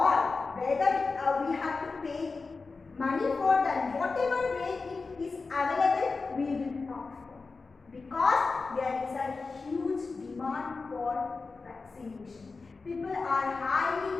whether we have to pay money for that, whatever way it is available, we will opt for. Because there is a huge demand for vaccination. People are highly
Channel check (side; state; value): right; quieter; 4.1 dB